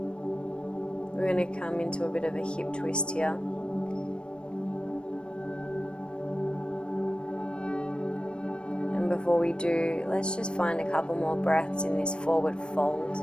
We're going to come into a bit of a hip twist here. Before we do, let's just find a couple more breaths in this forward fold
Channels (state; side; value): late; right; 0.055 ms